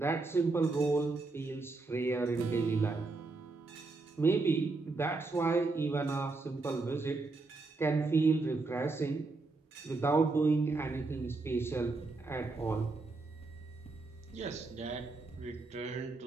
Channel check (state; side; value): quieter; left; 3.6 dB